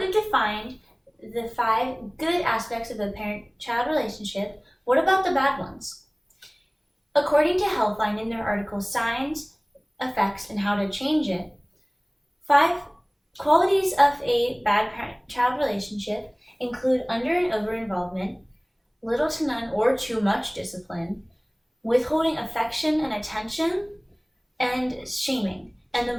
defined the 5 good aspects of a parent-child relationship, what about the bad ones? According to Healthline in their article Signs, Effects, and How to Change It, 5 qualities of a bad parent-child relationship include under and over involvement, little to none or too much discipline, withholding affection and attention, and shaming. And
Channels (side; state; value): both; identical; correlation 1.00